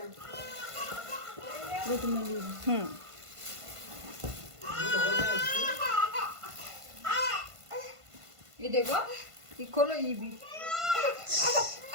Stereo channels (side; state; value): left; late; 1.5 ms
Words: ये देखो ये खोलो ये भी